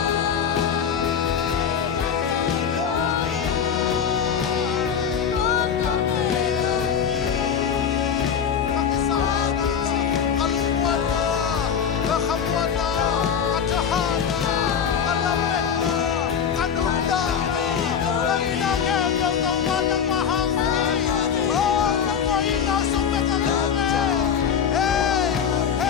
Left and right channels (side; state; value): right; quieter; 7.6 dB